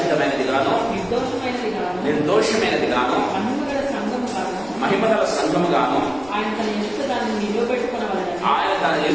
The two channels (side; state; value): left; noise; rumble, 22 dB below the sound